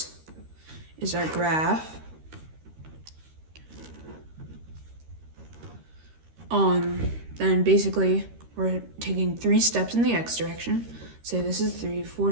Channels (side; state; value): left; late; 13 ms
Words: is our graph. Then basically we're taking 3 steps in the x direction. Say this is 3, 4